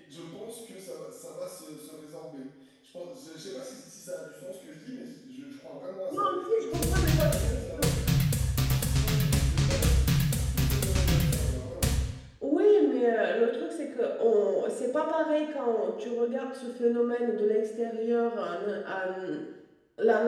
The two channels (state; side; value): identical; both; correlation 1.00